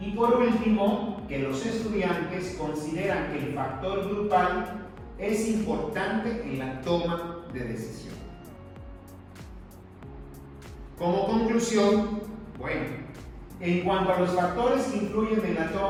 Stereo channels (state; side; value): identical; both; correlation 1.00